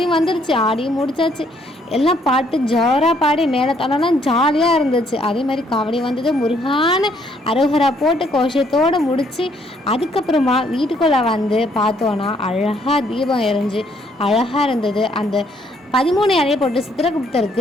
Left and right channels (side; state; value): both; normal; correlation 0.68